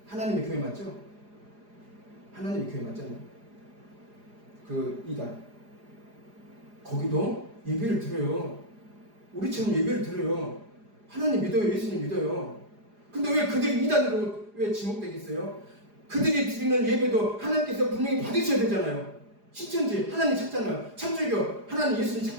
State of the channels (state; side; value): late; left; 4.9 ms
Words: 하나님의 교회 맞죠? 하나님의 교회 맞잖아요. 그 이단. 거기도 예배를 드려요. 우리처럼 예배를 드려요. 하나님 믿어요. 예수님 믿어요. 근데 왜 그들이 이단으로 왜 지목되겠어요? 그들이 드리는 예배도 하나님께서 분명히 받으셔야 되잖아요. 신천지 하나님 찾잖아요. 천주교 하나님 예수님